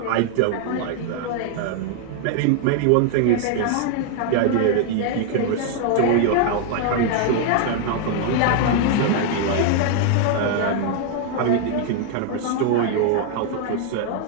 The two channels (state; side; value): different; both; correlation 0.00